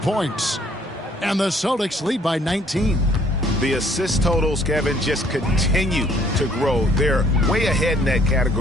And the Celtics lead by 19. The assist totals, Kevin, just continue to grow. They're way ahead in that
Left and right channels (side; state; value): both; normal; correlation 0.62